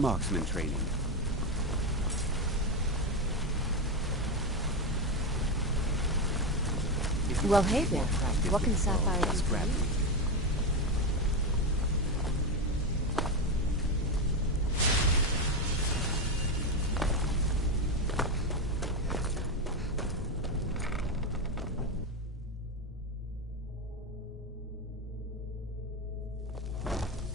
marksman training? Well, hey there. What can Sapphire do for you?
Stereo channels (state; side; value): normal; both; correlation 0.12